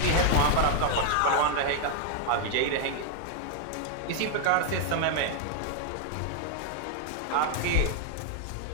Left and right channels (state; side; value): different; both; correlation 0.00